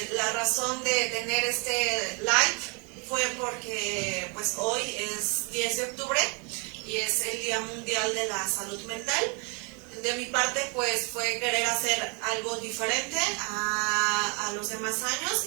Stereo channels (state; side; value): quieter; left; 34.0 dB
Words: La razón de tener este live fue porque pues hoy es 10 de octubre y es el Día Mundial de la Salud Mental. De mi parte pues fue querer hacer algo diferente a los demás años,